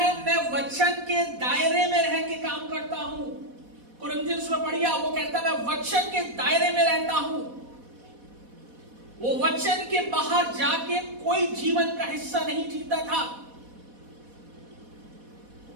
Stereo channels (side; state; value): left; late; 4.1 ms